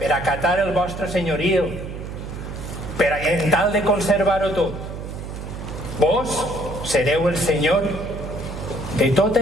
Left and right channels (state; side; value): noise; right; hum, 8 dB below the sound